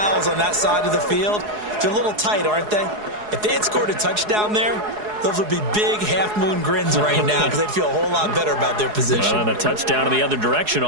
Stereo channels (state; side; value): late; left; 4.7 ms